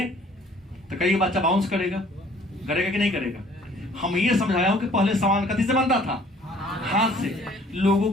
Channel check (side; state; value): both; normal; correlation 0.56